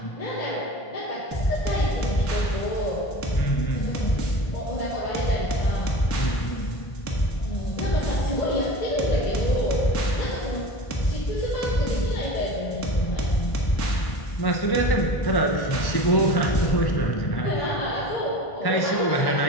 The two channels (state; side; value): late; right; 1.1 ms